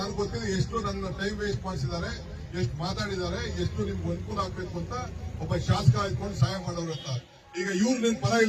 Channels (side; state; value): both; identical; correlation 1.00